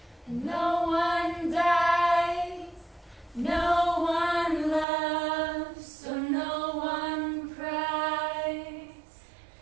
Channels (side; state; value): left; drops out; at 4.9 s